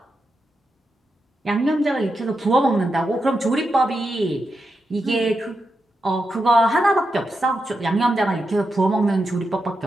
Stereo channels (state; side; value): normal; both; correlation 0.87